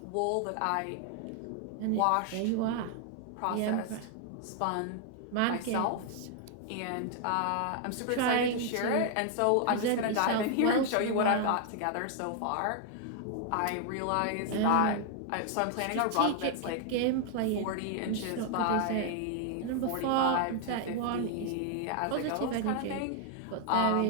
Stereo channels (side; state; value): both; different; correlation 0.00